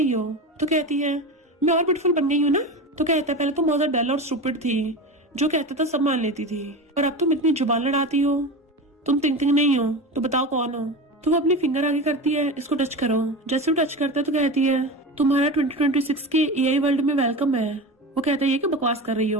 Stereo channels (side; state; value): both; normal; correlation 0.26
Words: हो। तो कहती है मैं और ब्यूटीफुल बन गई हूँ ना? तो कहता है पहले तुम बहुत ज्यादा डल और स्टूपिड थी, जो कहता था सब मान लेती थी, और अब तुम इतनी जुबान लड़ाती हो। तुम टिंकटिंक नहीं हो तो बताओ कौन हो? तो वो अपनी फिंगर आगे करती है इसको टच करो। जैसे वो टच करता है तो कहती है तुम्हारा 2026 के एआई वर्ल्ड में वेलकम है। वो कहता है ये क्या बकवास कर रही